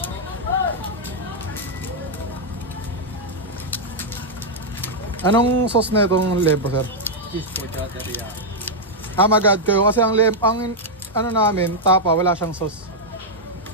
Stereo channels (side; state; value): both; normal; correlation -0.03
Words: Anong sauce na itong lebo, sir? Mag-add kayo kasi ang ano namin, tapa, wala siyang sauce.